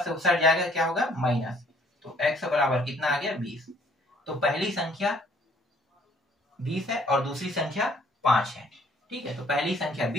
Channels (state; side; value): normal; both; correlation 0.61